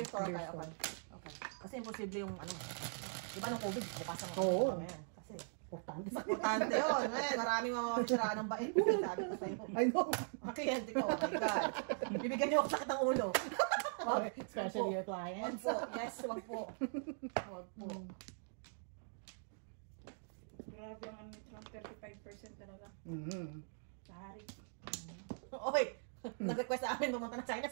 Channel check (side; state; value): left; silent; digital silence